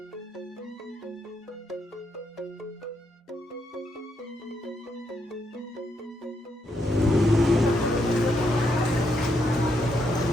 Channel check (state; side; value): normal; both; correlation 0.78